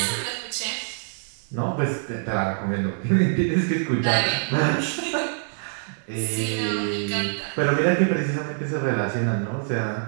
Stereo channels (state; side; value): silent; left; digital silence